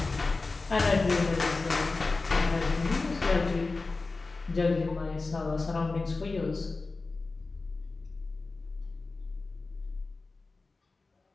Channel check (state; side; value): quieter; right; 3.7 dB